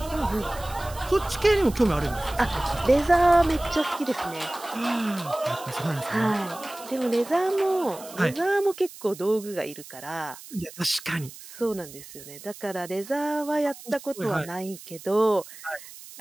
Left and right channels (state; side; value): noise; right; hiss, 16 dB below the sound